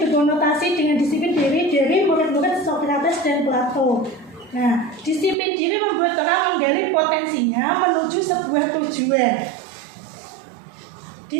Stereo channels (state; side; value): drops out; left; at 5.4 s